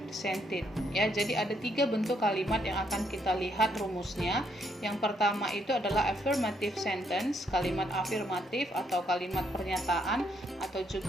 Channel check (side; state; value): both; normal; correlation 0.73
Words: Ya, jadi ada 3 bentuk kalimat yang akan kita lihat rumusnya. Yang pertama itu adalah affirmative sentence, kalimat afirmatif atau kalimat pernyataan atau